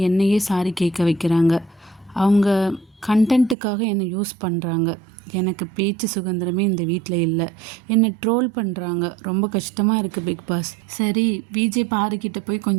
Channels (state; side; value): drops out; left; at 3.6 s